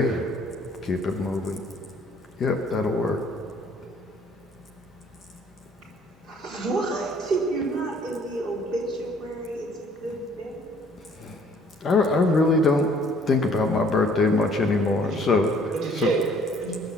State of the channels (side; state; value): both; normal; correlation 0.58